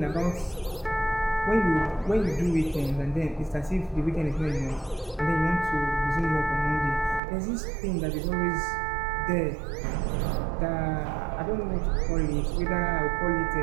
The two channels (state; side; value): drops out; left; at 7.2 s